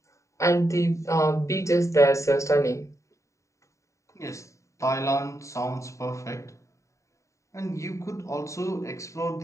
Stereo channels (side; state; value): right; late; 0.15 ms